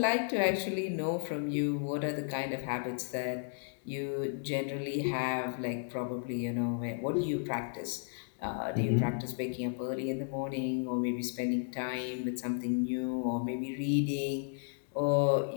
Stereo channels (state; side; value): silent; right; digital silence